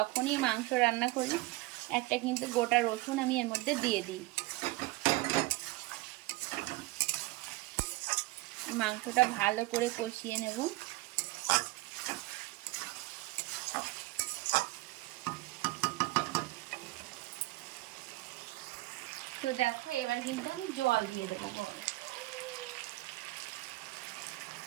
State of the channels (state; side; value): quieter; left; 20.8 dB